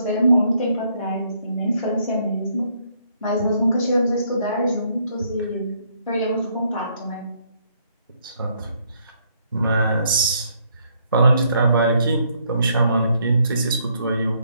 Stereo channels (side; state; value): both; inverted; correlation -0.70